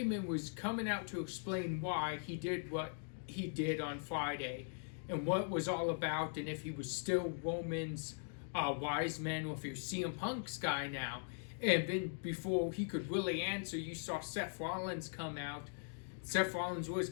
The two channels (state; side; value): silent; right; digital silence